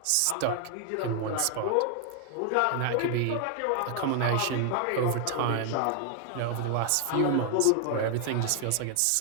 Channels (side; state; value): both; different; correlation 0.00